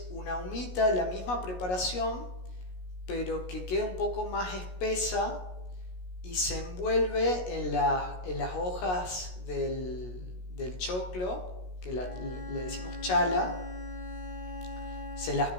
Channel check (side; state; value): right; late; 16 ms